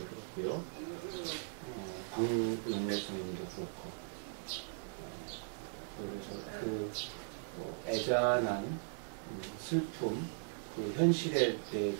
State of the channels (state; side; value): silent; left; digital silence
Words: 그렇고요. 광용래 선생님도 그렇고 그래서 그 애잔한 슬픔 그 현실에